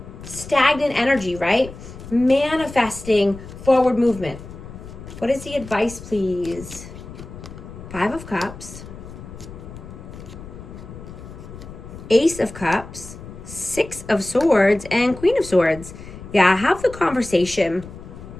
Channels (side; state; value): left; noise; rumble, 14 dB below the sound